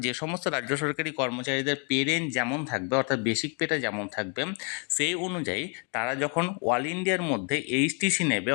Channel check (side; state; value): right; quieter; 37.3 dB